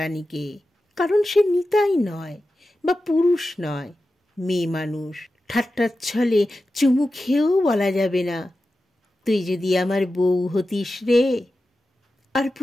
কারণ সে নিতাই নয় বা পুরুষ নয়, মেয়ে মানুষ। ঠাট্টার ছলে চুমু খেয়েও বলা যাবে না, তুই যদি আমার বউ হতিস রে। আর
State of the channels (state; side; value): normal; both; correlation 0.93